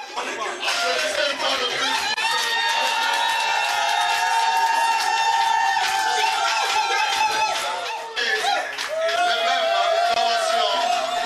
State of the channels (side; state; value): both; identical; correlation 1.00